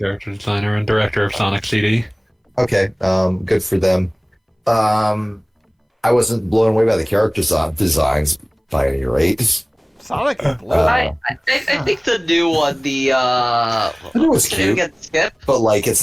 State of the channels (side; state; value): both; identical; correlation 1.00